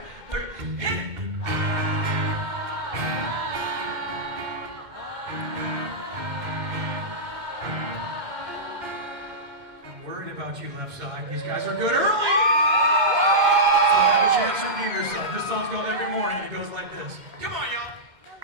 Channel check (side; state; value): left; late; 2.1 ms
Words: 1, 2, 3, hit it! I'm worried about you left side. These guys are good early! So have a chance to redeem yourself. This song's called Every Morning, it goes like this. Come on, y'all!